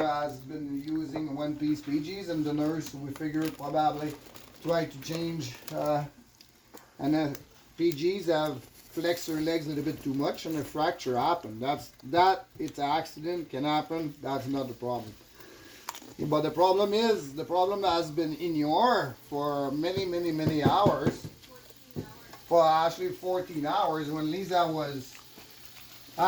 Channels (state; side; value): identical; both; correlation 1.00